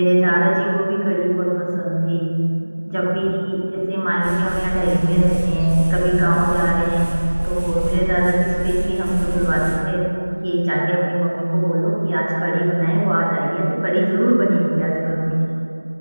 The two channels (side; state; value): both; inverted; correlation -1.00